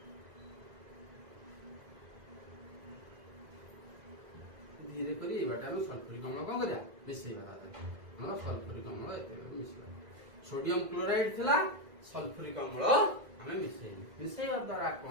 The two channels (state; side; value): late; left; 2.0 ms